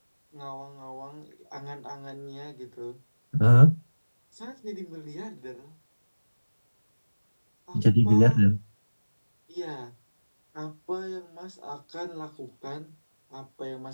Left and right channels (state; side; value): inverted; both; correlation -1.00